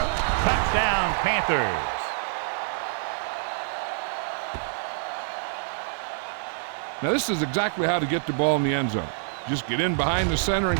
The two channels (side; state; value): left; silent; 61 dB below the other